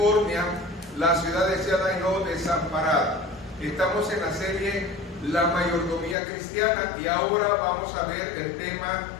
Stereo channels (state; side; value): drops out; right; at 6.2 s